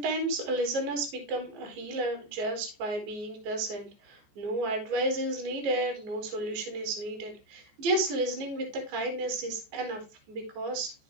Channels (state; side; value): late; left; 14 ms